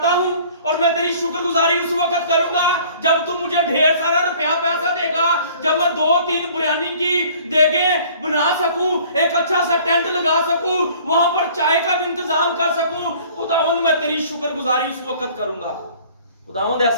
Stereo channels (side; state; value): both; inverted; correlation -0.52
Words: हूं और मैं तेरी शुक्रगुजारी उस वक्त करूंगा जब तू मुझे ढेर सारा रुपया पैसा देगा, जब मैं 2-3 बिरयानी की देगे बना सकूं, एक अच्छा सा टेंट लगा सकूं, वहां पर चाय का भी इंतजाम कर सकूं। खुदावंद मैं तेरी शुक्रगुजारी उस वक्त करूंगा। खुदावंद